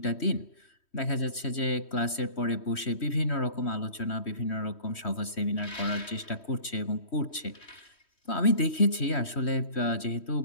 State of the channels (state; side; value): late; right; 3.1 ms